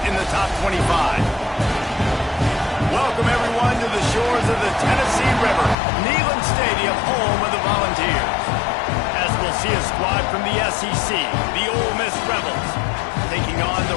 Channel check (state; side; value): drops out; right; at 5.8 s